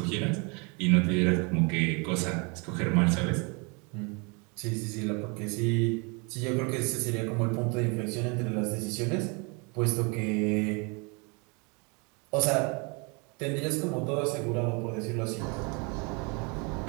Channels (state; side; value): quieter; left; 31.8 dB